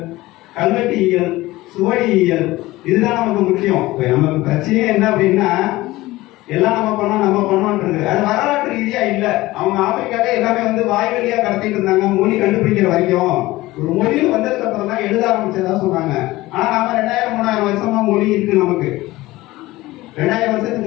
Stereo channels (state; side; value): quieter; right; 18.4 dB